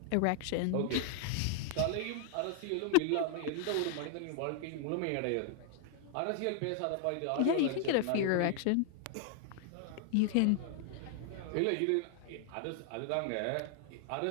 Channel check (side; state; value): both; different; correlation 0.00